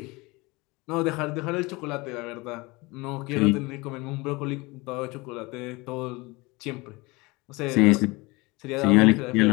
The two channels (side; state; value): right; quieter; 24.0 dB